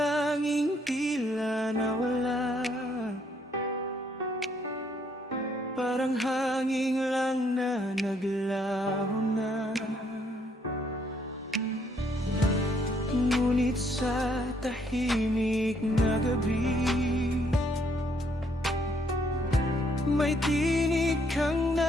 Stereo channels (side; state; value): both; normal; correlation 0.69